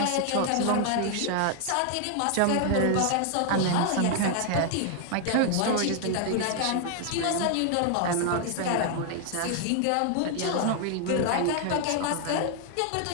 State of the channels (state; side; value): different; both; correlation 0.00